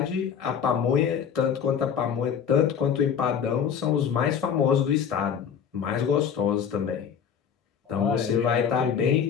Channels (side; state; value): right; quieter; 7.6 dB